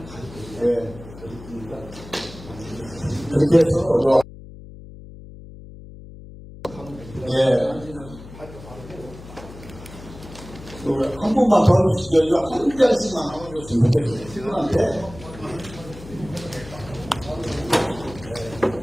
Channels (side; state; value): left; noise; hum, 16 dB below the sound